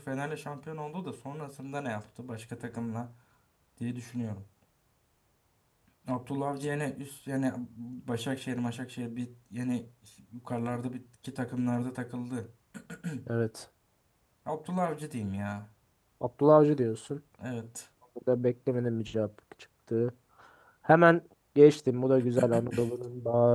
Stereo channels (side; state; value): both; identical; correlation 1.00